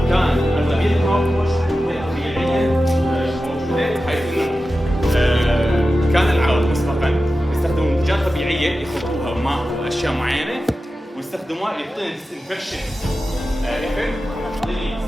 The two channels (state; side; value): normal; both; correlation 0.93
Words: كان اغلبيه الماوث ووش طبيعيه موجوده، حيث انه كان العرب مسبقا يستخدمون منتجات طبيعيه يخلطوها ماء واشياء معينه ويستخدموها يعطينا ديسانفكشن افكت، يعطيني